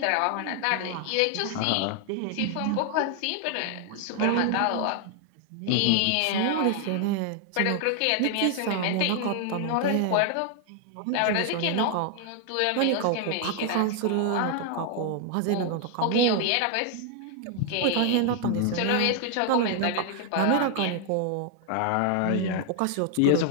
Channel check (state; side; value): different; both; correlation 0.00